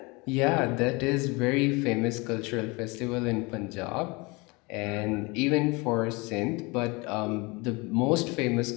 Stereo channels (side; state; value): right; quieter; 26.3 dB